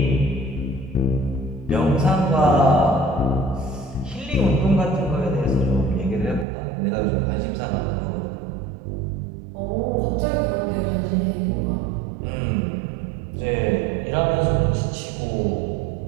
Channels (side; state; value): left; drops out; at 6.5 s